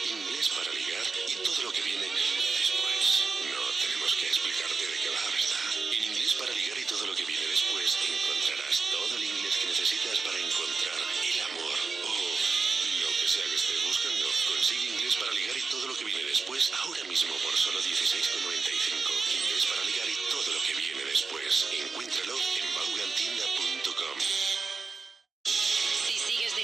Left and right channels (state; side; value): quieter; left; 4.4 dB